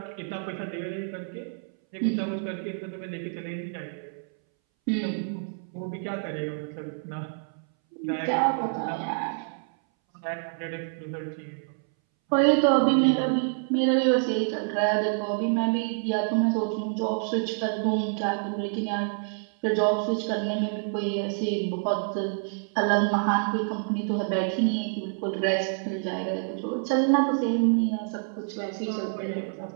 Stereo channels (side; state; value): left; silent; 60 dB below the other